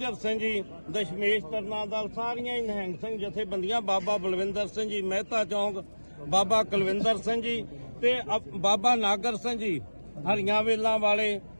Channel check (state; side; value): inverted; both; correlation -1.00